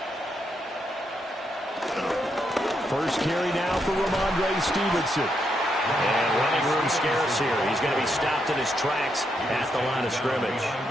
First carry now for Ramondre Stevenson. And running room scarce here. He's going to be stopped in his tracks at the line of scrimmage.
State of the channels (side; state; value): both; normal; correlation 0.80